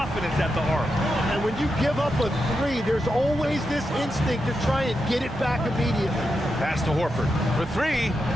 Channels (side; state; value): both; normal; correlation 0.87